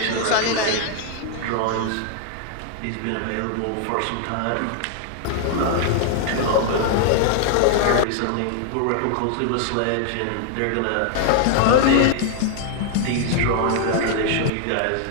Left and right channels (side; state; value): both; different; correlation 0.00